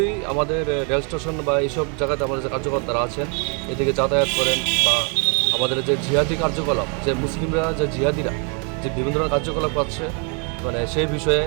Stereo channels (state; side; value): quieter; left; 36.2 dB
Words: আমাদের রেল স্টেশন বা এইসব জায়গাতে আমাদের যে কার্যকর্তারা আছেন এদিকে যাতায়াত করেন, বা আমাদের যে জিহাদি কার্যকলাপ, যে মুসলিমরা যে জিহাদিরা যে বিভিন্ন ধরনের কার্যকলাপ করছে মানে সেই বিষয়ে